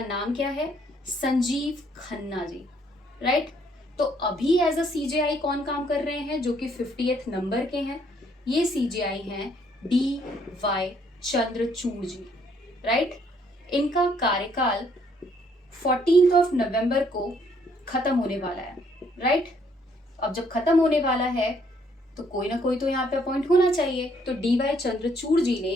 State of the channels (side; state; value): both; normal; correlation 0.67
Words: क्या है? संजीव खन्ना जी, राइट। तो अभी एज अ CJI कौन काम कर रहे हैं, जो कि 50th नंबर के हैं? ये CJI हैं DY चंद्रचूड़ जी, राइट। इनका कार्यकाल 14 नवंबर को खत्म होने वाला है, राइट। अब जब खत्म होने वाला है तो कोई ना कोई तो यहाँ पे अपॉइंट होना चाहिए। तो DY चंद्रचूड़ जी